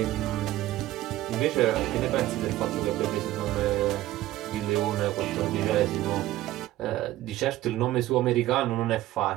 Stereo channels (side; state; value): left; quieter; 15.5 dB